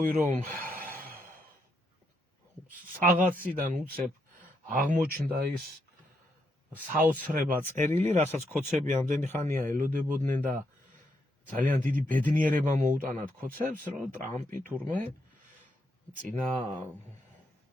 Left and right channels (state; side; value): normal; both; correlation 0.78